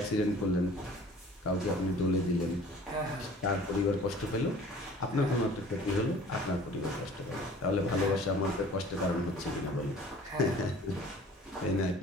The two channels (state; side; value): normal; both; correlation 0.48